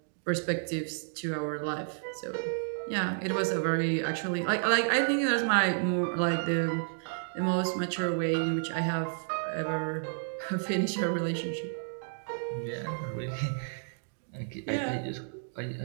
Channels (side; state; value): left; silent; digital silence